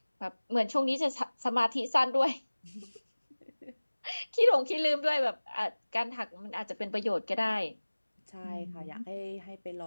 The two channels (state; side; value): inverted; both; correlation -1.00